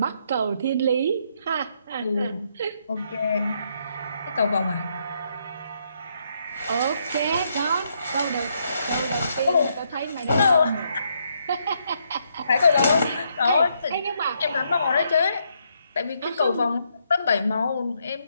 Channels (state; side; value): inverted; both; correlation -0.75